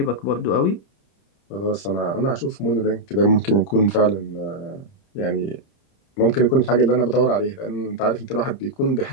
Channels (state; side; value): late; right; 30 ms